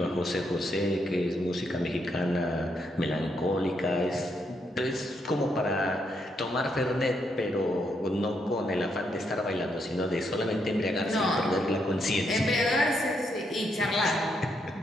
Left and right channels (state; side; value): normal; both; correlation 0.77